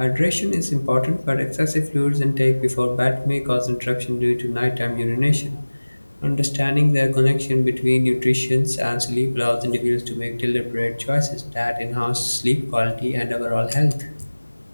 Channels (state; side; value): inverted; both; correlation -1.00